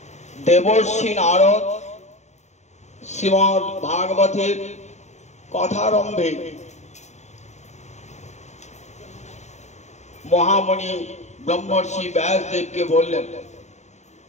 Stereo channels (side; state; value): right; late; 0.33 ms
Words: देवर्षि नारद श्रीमद् भागवतेर कथारम्भे महामुनि ब्रह्मर्षि व्यासदेव के बोलें